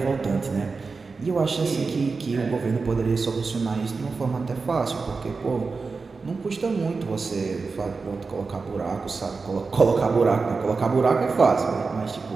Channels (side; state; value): left; quieter; 4.4 dB